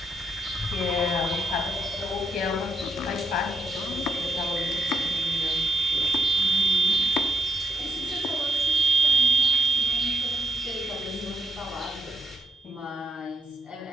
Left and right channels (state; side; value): normal; both; correlation 0.75